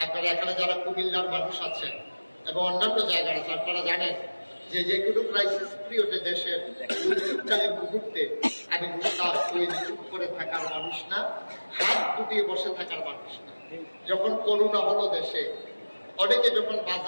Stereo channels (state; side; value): inverted; both; correlation -1.00